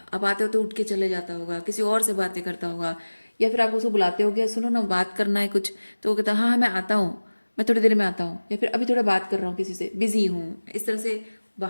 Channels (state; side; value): inverted; both; correlation -1.00